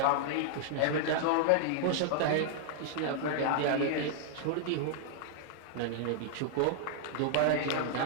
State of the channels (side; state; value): both; different; correlation -0.01